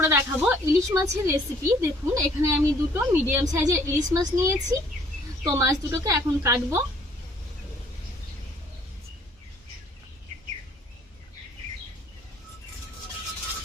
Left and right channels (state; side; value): normal; both; correlation 0.60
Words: দেখাবো ইলিশ মাছের রেসিপি। দেখুন, এখানে আমি দুটো মিডিয়াম সাইজের ইলিশ মাছ নিয়েছি। তো মাছ দুটোকে এখন কাটবো।